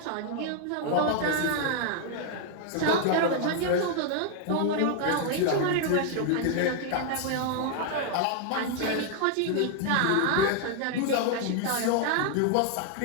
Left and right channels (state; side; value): different; both; correlation 0.00